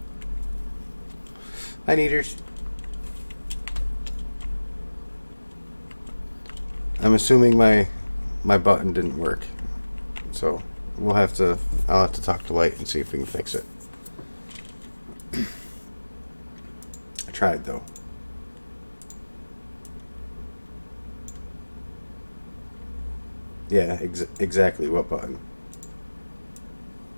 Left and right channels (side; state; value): both; inverted; correlation -1.00